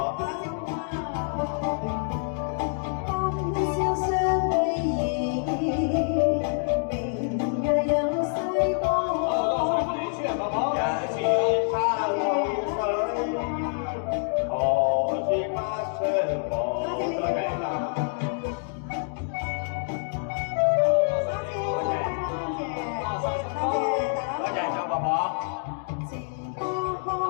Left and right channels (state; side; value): silent; right; 60 dB below the other